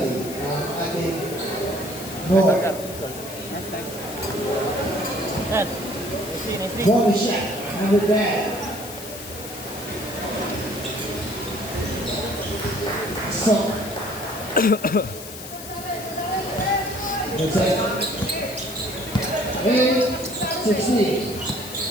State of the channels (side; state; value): left; noise; hiss, 12 dB below the sound